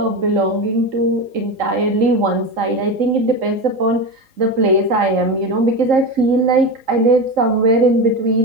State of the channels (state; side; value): late; left; 3.8 ms